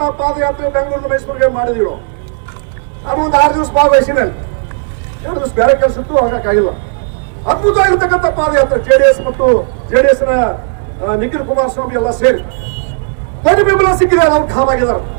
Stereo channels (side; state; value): left; silent; 66 dB below the other